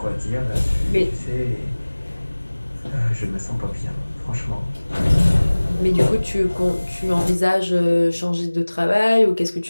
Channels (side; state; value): both; inverted; correlation -1.00